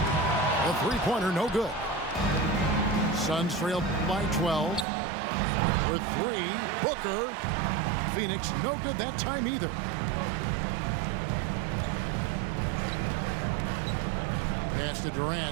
The three-pointer, no good. Suns trail by 12. For 3, Booker. Phoenix, no good that time either. Pass to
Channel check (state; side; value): drops out; left; at 4.9 s